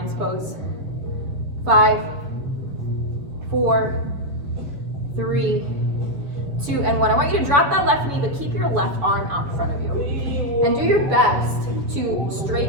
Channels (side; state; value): left; late; 7.0 ms